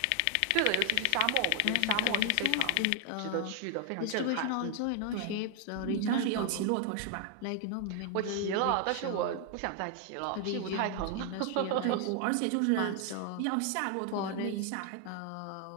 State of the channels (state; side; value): different; both; correlation 0.00